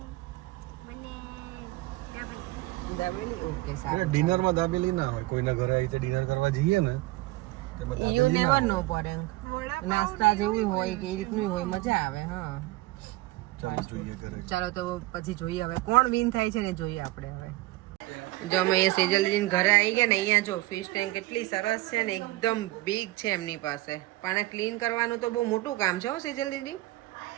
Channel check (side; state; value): left; quieter; 19.4 dB